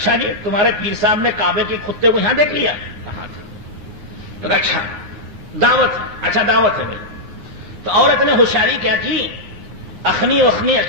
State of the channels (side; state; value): left; late; 9.6 ms